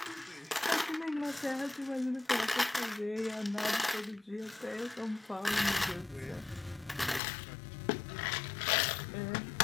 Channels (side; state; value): right; drops out; at 7.2 s